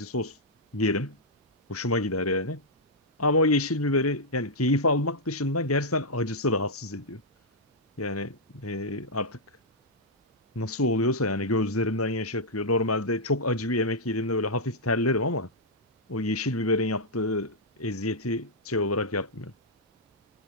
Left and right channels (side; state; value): both; normal; correlation -0.06